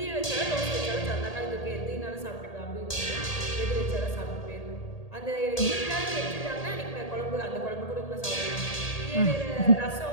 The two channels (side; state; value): right; late; 1.8 ms